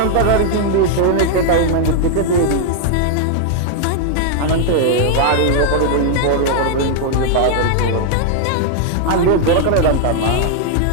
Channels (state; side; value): different; both; correlation 0.00